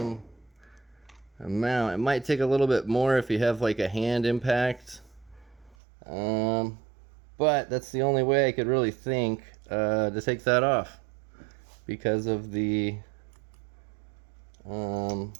amount. It might take a little bit more if you have like a hand impact, but that's the only way I could really think to take that off because of the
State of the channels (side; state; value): left; drops out; at 5.8 s